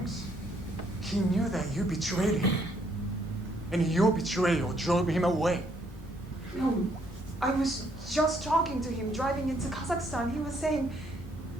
He knew that you betrayed him. And your betrayal drove him away. No, I was just talking to him driving into Kazakhstan. He was saying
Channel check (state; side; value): normal; both; correlation 0.69